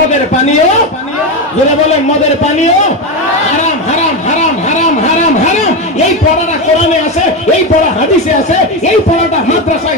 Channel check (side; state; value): both; normal; correlation 0.14